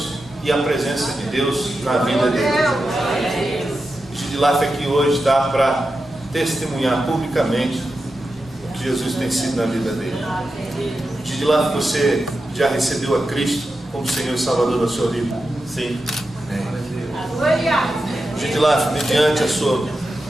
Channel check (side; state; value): both; normal; correlation 0.90